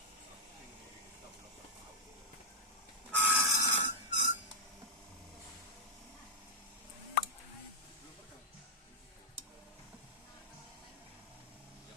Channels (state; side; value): normal; both; correlation -0.03